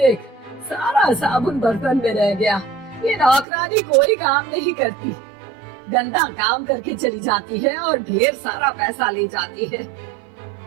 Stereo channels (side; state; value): left; drops out; at 3.5 s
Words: सारा साबुन बर्तन में रह गया। ये नौकरानी कोई काम नहीं करती, गंदा काम करके चली जाती है और ढेर सारा पैसा ले जाती है।